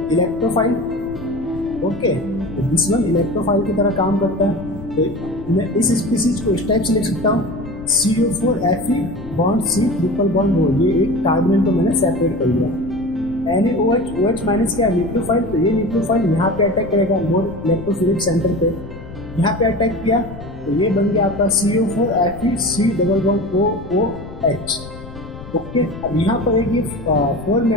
electrophile. Okay, तो दिस वन इलेक्ट्रोफाइल की तरह काम करता है। तो मैं इस स्पीसीज को इस टाइप से लिख सकता हूँ, CO4Fe bond C triple bond O। ये एक कार्बोनिल को मैंने सेपरेट कर लिया। NaOH, OH माइनस क्या न्यूक्लियोफाइल, तो ये न्यूक्लियोफाइल यहाँ पे अटैक करेगा मोर इलेक्ट्रोफिलिक सेंटर पे, यहाँ पे अटैक किया तो ये बन गया आपका CO4Fe C double bond OOH। Okay, अब यहाँ पर एक 4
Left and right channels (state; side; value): noise; left; rumble, 15 dB below the sound